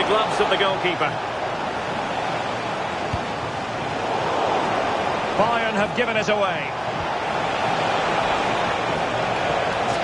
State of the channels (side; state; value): both; identical; correlation 1.00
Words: gloves of the goalkeeper. Bayern have given it away.